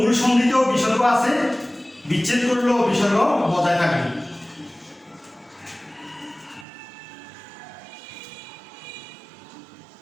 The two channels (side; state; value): left; drops out; at 6.7 s